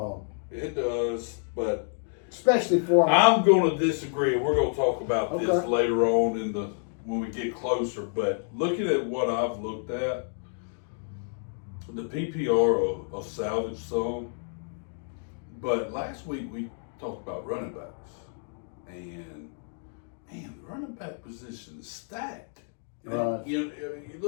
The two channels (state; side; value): silent; right; 59 dB below the other